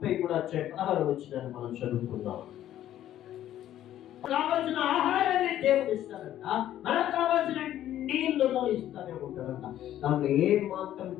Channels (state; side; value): quieter; right; 12.2 dB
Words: మనం చదువుకుందాం. కావలసిన ఆహారాన్ని దేవుడు ఇస్తాడంట, మనకు కావలసిన నీళ్లను ఇస్తానే ఉంటాడంట. దాంట్లో ఏ మాత్రం